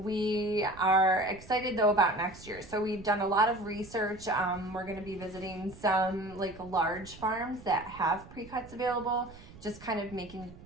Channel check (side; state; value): right; noise; rumble, 19 dB below the sound